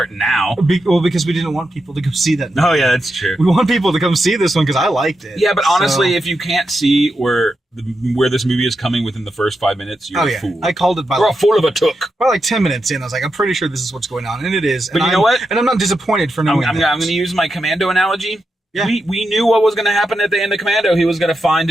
now. Because we didn't want people to go see that movie. Oh yeah, that's true. We want people to come see this one because I liked it. Yeah, but honestly, if you can't see where this movie is coming within the first 5 minutes, you're a fool. I called it You're a fool of a took. By like 10 minutes in, I was like, I'm pretty sure this is what's going on, and it is. But you know what? And I'm not disappointed for knowing I'm going to use my Commando analogy. Yeah. We knew what was going to happen at the end of Commando. He was going to find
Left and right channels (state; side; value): normal; both; correlation 0.87